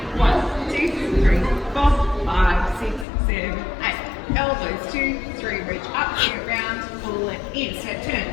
1, 2, 3, 4, 5, 6, 7, 8. Elbows 2, 3, reach up, get round, pull it in. Step turn.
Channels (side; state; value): right; drops out; at 3.1 s